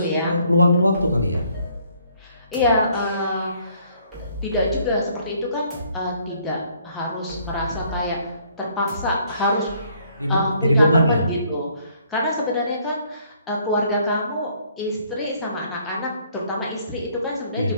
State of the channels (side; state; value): both; inverted; correlation -0.64